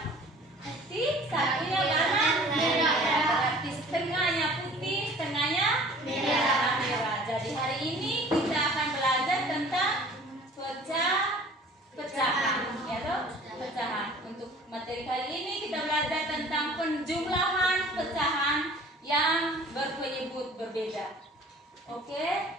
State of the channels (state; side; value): normal; both; correlation 0.48